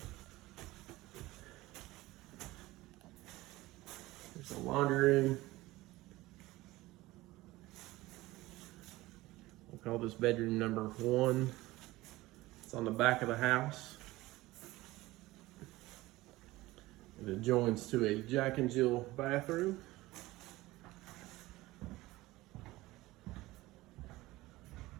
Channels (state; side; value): quieter; left; 18.8 dB